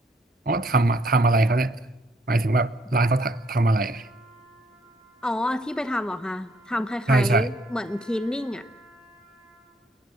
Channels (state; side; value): normal; both; correlation 0.67